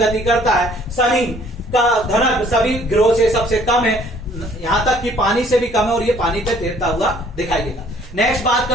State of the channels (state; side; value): normal; both; correlation 0.58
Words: करता है। शनि का घनत्व सभी ग्रहों से सबसे कम है, यहां तक कि पानी से भी कम है, और ये पानी पे तैरता हुआ दिखाई देगा। नेक्स्ट बात